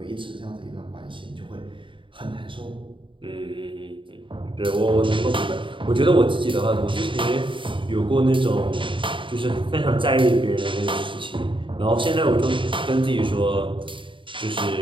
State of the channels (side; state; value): left; late; 0.24 ms